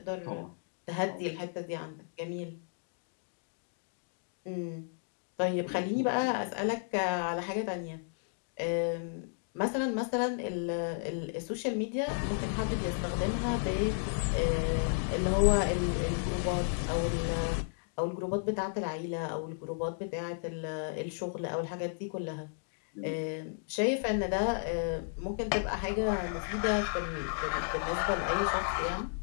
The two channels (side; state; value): right; silent; digital silence